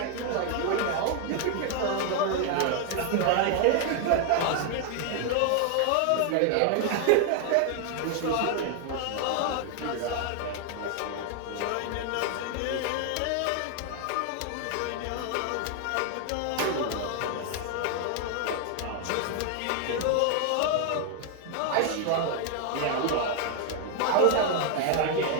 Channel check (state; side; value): different; both; correlation 0.00